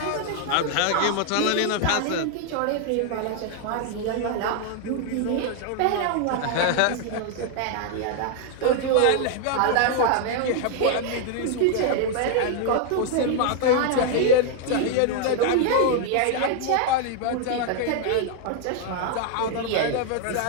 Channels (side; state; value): both; different; correlation 0.00